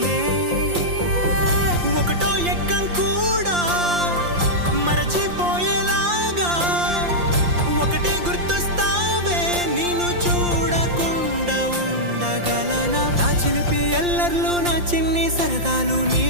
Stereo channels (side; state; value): left; late; 5.7 ms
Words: ఒకటో ఎక్కం కూడా మరచిపోయేలాగా ఒకటే గుర్తొస్తావే, నేను చూడకుండా ఉండగలనా? నా చిలిపి ఎల్లర్లు నా చిన్ని సరదాలు